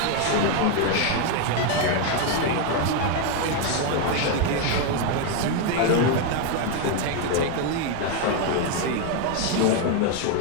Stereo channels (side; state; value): both; different; correlation 0.01